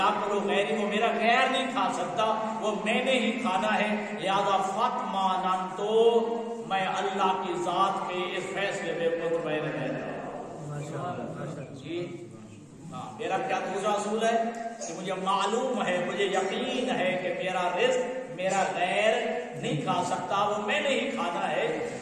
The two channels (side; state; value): both; identical; correlation 1.00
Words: غیری، وہ میرا غیر نہیں کھا سکتا، وہ میں نے ہی کھانا ہے، لہذا فاطمأننت، میں اللہ کی ذات کے اس فیصلے میں مطمئن رہتا ہوں۔ جی ہاں، میرا کیا دوسرا اصول ہے کہ مجھے معلوم ہے، مجھے یقین ہے کہ میرا رزق میرا غیر نہیں کھا سکتا، وہ میں نے ہی کھانا ہے،